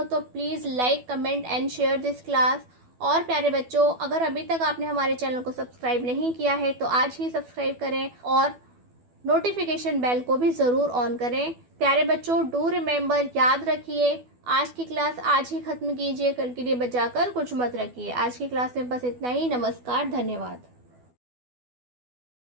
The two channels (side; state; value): left; late; 12 ms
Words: तो please like, comment and share this class. और प्यारे बच्चों, अगर अभी तक आपने हमारे चैनल को सब्सक्राइब नहीं किया है तो आज ही सब्सक्राइब करें, और नोटिफिकेशन बेल को भी ज़रूर ऑन करें। प्यारे बच्चों, डू रिमेंबर, याद रखिए, आज की क्लास आज ही ख़त्म कीजिए, कल के लिए बचाकर कुछ मत रखिए। आज की क्लास में बस इतना ही। नमस्कार, धन्यवाद।